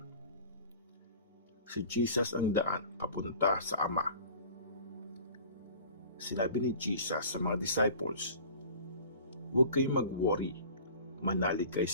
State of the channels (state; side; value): inverted; both; correlation -0.44